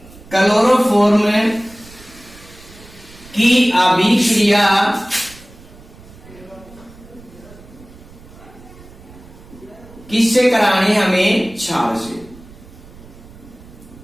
क्लोरोफॉर्म की अभिक्रिया किससे करानी हमें? क्षार से।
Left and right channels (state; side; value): noise; right; rumble, 21 dB below the sound